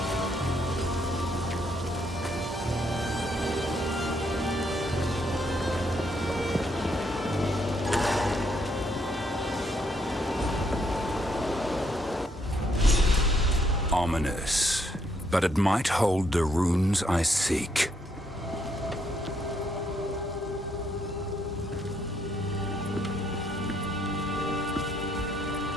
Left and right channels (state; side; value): normal; both; correlation 0.73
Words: Ominous, but it might hold the runes I seek.